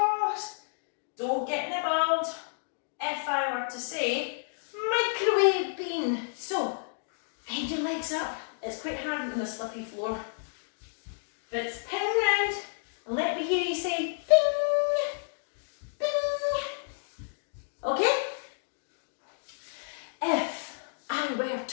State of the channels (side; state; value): right; silent; digital silence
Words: don't get nibbled. If I were to say microwave bean, so bend your legs up, it's quite hard on the slippy floor, but it's ping round and let me hear you say bing, bing, okay? If I were